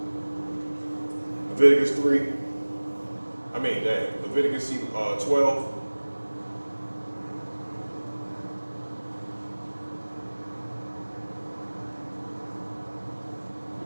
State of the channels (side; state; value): both; inverted; correlation -1.00